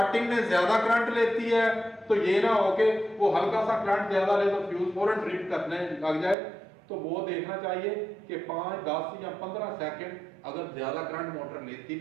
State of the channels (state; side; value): drops out; left; at 6.4 s